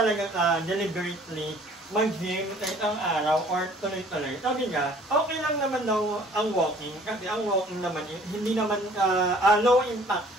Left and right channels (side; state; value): both; normal; correlation 0.54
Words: ka deliberately mag-gym sa isang araw or tuloy-tuloy. Sabi niya, okay lang naman daw ang walking kasi ang walking naman hindi naman low impact